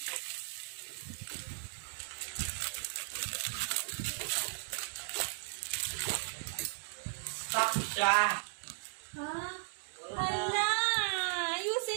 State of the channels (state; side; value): silent; left; digital silence